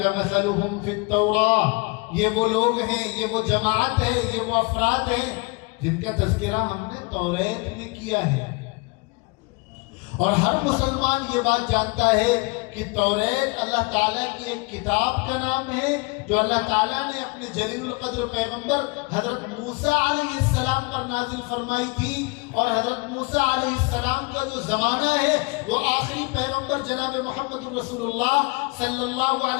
مَثَلُهُمْ فِي التَّوْرَاةِ، یہ وہ لوگ ہیں، یہ وہ جماعت ہے، یہ وہ افراد ہیں جن کا تذکرہ ہم نے توریت میں کیا ہے۔ اور ہر مسلمان یہ بات جانتا ہے کہ توریت اللہ تعالیٰ کی ایک کتاب کا نام ہے جو اللہ تعالیٰ نے اپنے جلیل القدر پیغمبر حضرت موسیٰ علیہ السلام پر نازل فرمائی تھی، اور حضرت موسیٰ علیہ السلام کا جو زمانہ ہے وہ آخری پیغمبر جناب محمد رسول اللہ صلی اللہ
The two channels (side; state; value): right; quieter; 27.8 dB